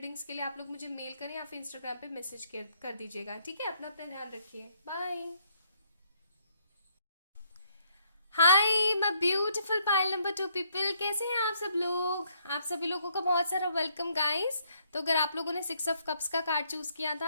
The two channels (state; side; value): inverted; both; correlation -0.69